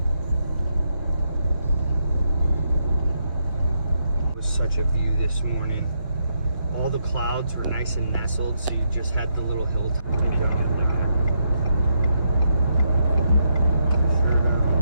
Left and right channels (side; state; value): both; inverted; correlation -0.78